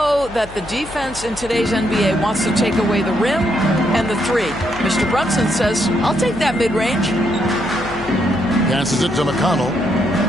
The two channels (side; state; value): left; noise; hum, 17 dB below the sound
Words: that the defense in today's NBA wants to take away the rim and the 3. Mr. Brunson says, I'll take that mid-range. Passes it to McConnell.